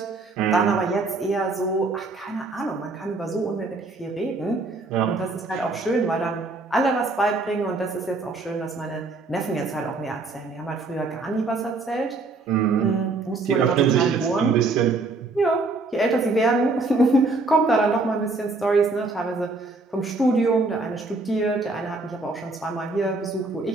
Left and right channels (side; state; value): left; quieter; 3.5 dB